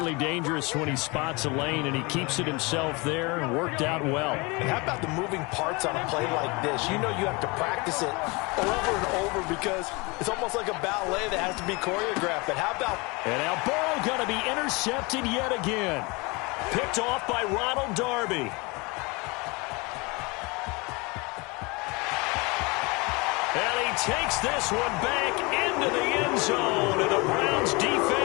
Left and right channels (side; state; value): right; quieter; 26.9 dB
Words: dangerous when he spots a lane, and he keeps it himself there and worked out well. And how about the moving parts on a play like this? You know you have to practice it over and over because it's almost like a ballet that has to be choreographed. But how about... And now Burrow going to be intercepted yet again. Picked off by Ronald Darby. And he takes this one back into the end zone, and the Browns